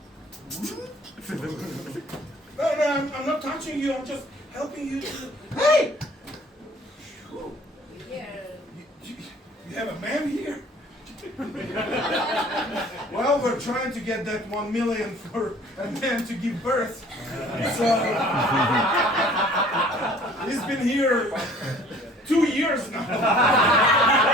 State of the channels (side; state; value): both; normal; correlation 0.52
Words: No, I'm not touching you. I'm just helping you to. Hey! You have a man here? Well, we're trying to get that 1 million for a man to give birth. So he's been here 2 years now.